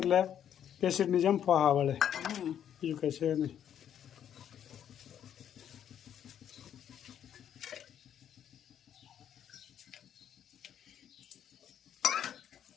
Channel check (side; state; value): right; quieter; 9.6 dB